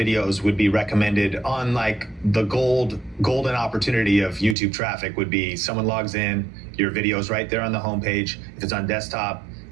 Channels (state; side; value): drops out; left; at 4.5 s